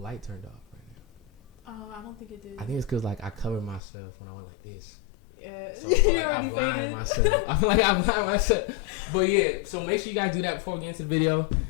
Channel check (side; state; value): right; drops out; at 3.8 s